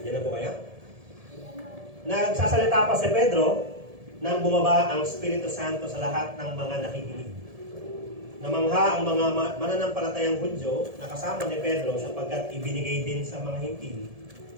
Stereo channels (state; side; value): late; left; 1.7 ms